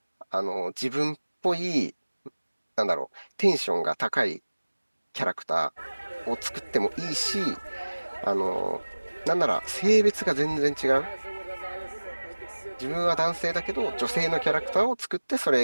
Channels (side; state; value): both; inverted; correlation -1.00